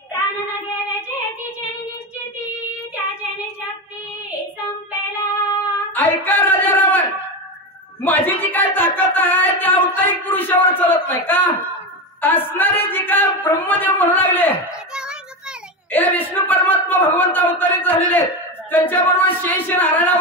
प्राण न गेल्याचे तिचे निश्चिती, त्याचे निशक्ती संपेला. ऐका राजा रावण, माझी जी काय ताकद आहे त्या अवतारिक पुरुषावर चालत नाही का? असणारे जे काय ब्रह्मदेव म्हणू लागले हे विष्णू परमात्मा भगवंत अवतारित झालेले, त्यांच्याबरोबर शेष नारायण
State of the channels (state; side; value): normal; both; correlation 0.17